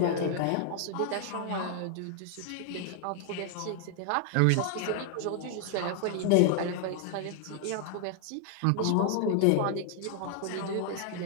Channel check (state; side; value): different; both; correlation 0.00